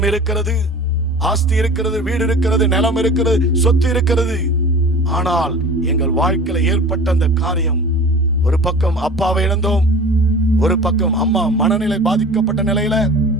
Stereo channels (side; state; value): both; normal; correlation 0.40